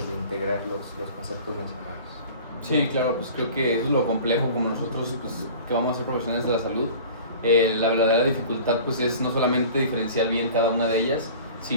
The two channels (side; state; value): both; inverted; correlation -0.42